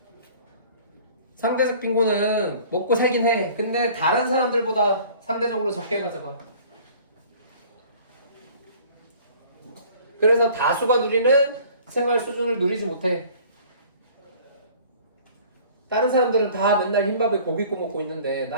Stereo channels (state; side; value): inverted; both; correlation -0.49